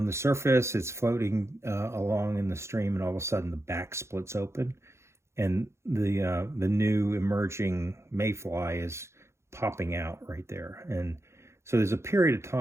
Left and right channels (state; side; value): late; left; 0.13 ms